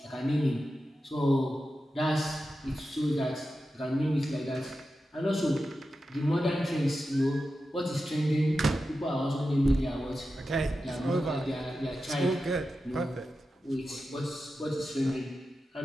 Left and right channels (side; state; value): both; normal; correlation 0.91